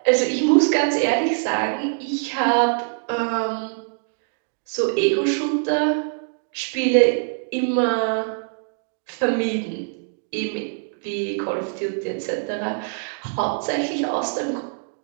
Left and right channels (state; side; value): silent; left; digital silence